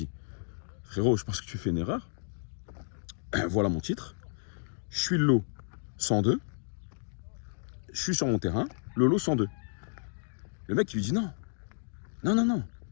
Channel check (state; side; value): silent; right; digital silence